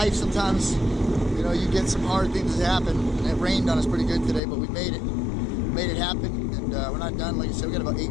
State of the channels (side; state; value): right; drops out; at 4.4 s